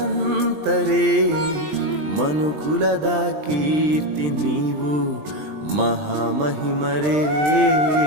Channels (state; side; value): late; left; 20 ms